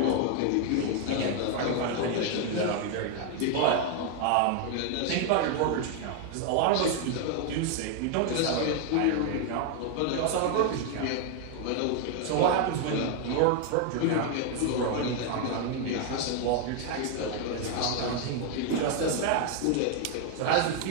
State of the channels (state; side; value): different; both; correlation 0.01